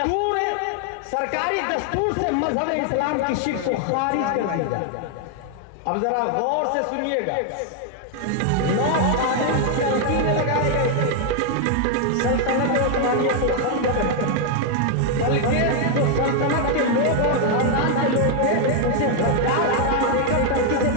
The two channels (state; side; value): different; both; correlation 0.00